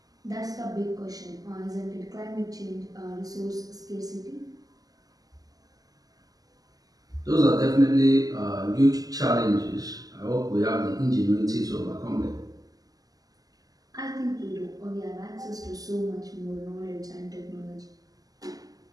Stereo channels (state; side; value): late; left; 0.17 ms